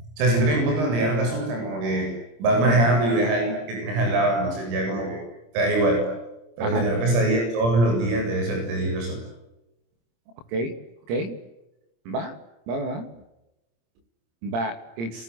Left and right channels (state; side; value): late; left; 26 ms